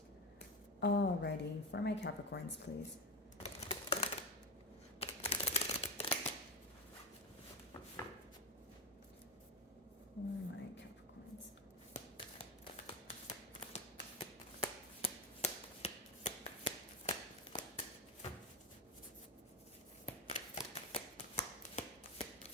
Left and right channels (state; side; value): normal; both; correlation 0.16